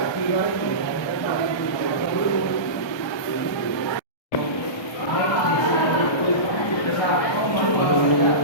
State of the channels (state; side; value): late; right; 1.2 ms